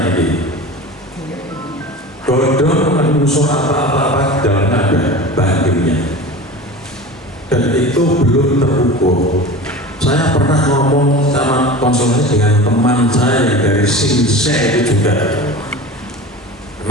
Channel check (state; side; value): normal; both; correlation 0.34